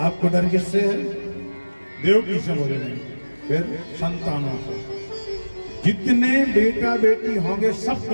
डर किससे है? देवकी से बोले नहीं, फिर संतानों से। जितने बेटा बेटी होंगे सब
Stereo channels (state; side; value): inverted; both; correlation -1.00